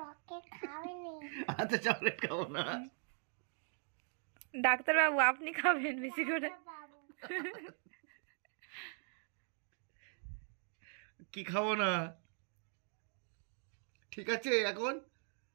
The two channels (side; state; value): left; silent; 51 dB below the other